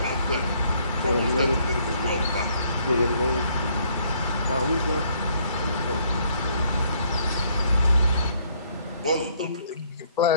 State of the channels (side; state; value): both; inverted; correlation -0.66